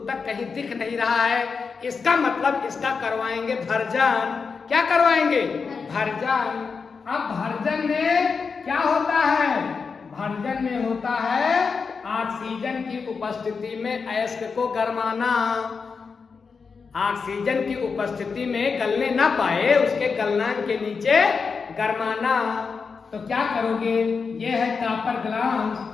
तक कहीं दिख नहीं रहा है, इसका मतलब इसका करवाएंगे भरजान। क्या करवाएंगे? भरजान। अब भरजन में क्या होता है? भरजन में होता है ऑक्सीजन की उपस्थिति में अयस्क को गरमाना। ऑक्सीजन की उपस्थिति में गलने ना पाए, उसके गलनांक के नीचे गरमाना। तो क्या करोगे? ये है कापर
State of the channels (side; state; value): right; quieter; 5.2 dB